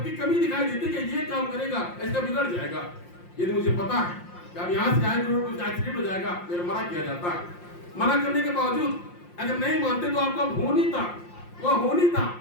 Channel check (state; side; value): late; right; 5.7 ms